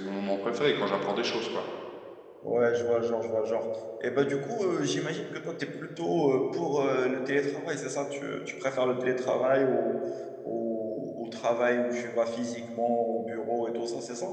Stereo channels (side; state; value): both; identical; correlation 1.00